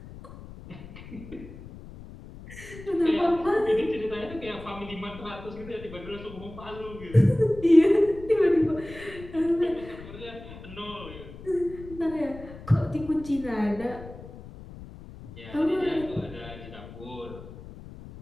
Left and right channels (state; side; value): noise; left; rumble, 15 dB below the sound